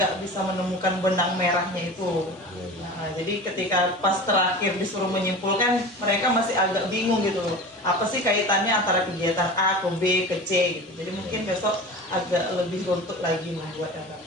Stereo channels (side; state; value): both; normal; correlation 0.34